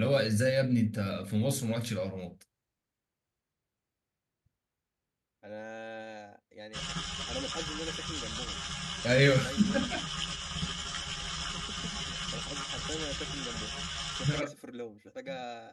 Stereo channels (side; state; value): both; identical; correlation 1.00